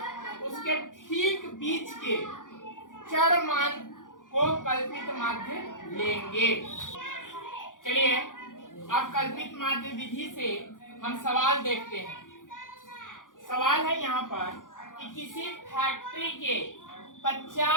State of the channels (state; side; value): late; right; 0.88 ms